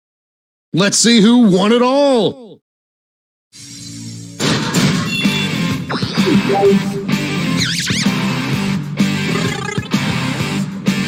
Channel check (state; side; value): identical; both; correlation 1.00